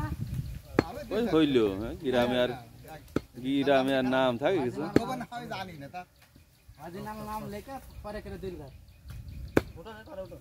ওই হইলো গ্রামে আর নাম থাকে কিছু খবর না আমি জানি না তা আজ নাম লেখা পরে করে দিলদার ওটা না করে ওটা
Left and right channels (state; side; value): identical; both; correlation 1.00